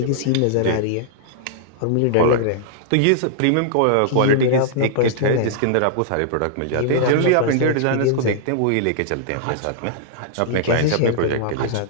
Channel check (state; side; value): different; both; correlation -0.01